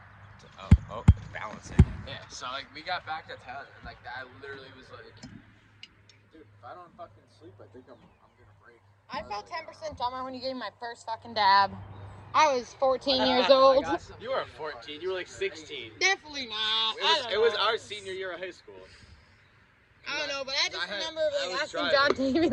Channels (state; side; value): identical; both; correlation 1.00